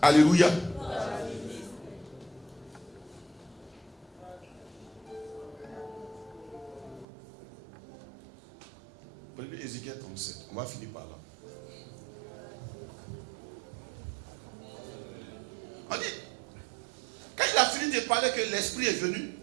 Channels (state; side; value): drops out; left; at 7.1 s